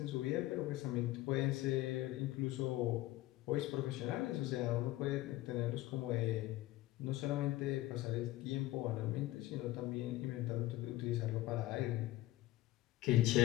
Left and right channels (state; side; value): quieter; right; 16.8 dB